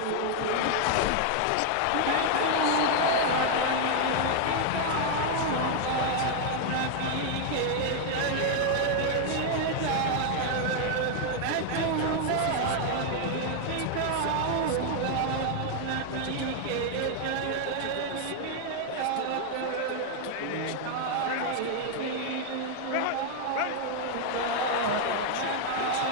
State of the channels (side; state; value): both; different; correlation 0.00